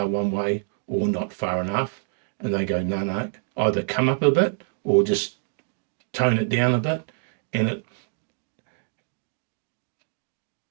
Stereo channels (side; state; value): left; silent; 61 dB below the other